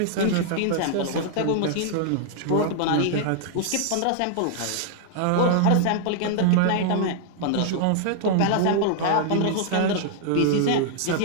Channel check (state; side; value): different; both; correlation -0.01